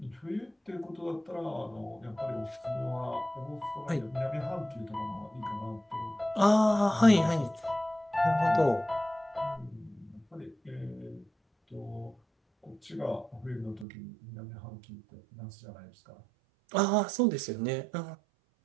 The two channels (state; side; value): drops out; left; at 13.9 s